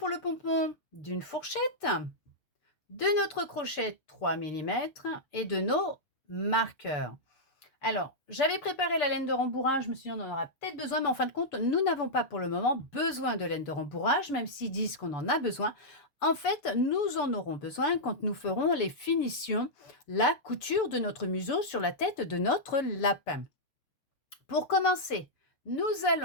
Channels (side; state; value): right; late; 6.9 ms